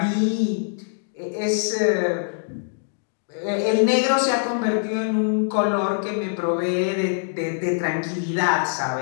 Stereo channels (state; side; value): silent; right; digital silence